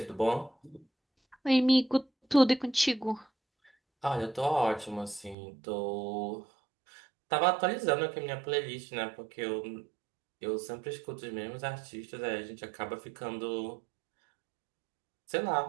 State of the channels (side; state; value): left; drops out; at 5.4 s